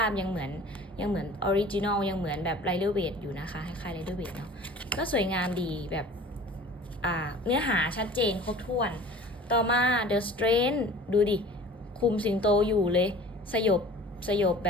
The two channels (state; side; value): normal; both; correlation 0.44